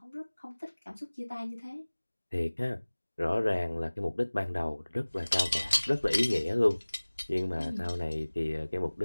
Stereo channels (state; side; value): inverted; both; correlation -1.00